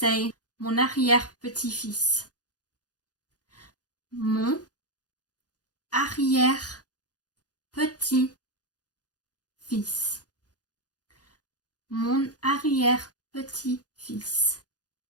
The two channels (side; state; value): right; late; 0.68 ms